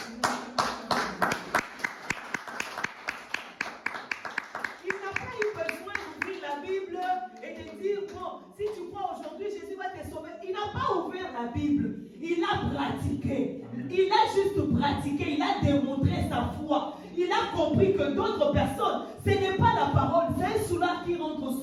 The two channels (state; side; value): identical; both; correlation 1.00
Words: Il n'a pas eu besoin d'ouvrir la Bible et de dire, bon, si tu crois aujourd'hui, Jésus va te sauver. Il n'a pas ouvert la Bible. Il a pratiqué. Il a juste pratiqué. Il a démontré sa foi. Il a compris que d'autres personnes, ce n'est pas la parole, c'est un soulard qui rentre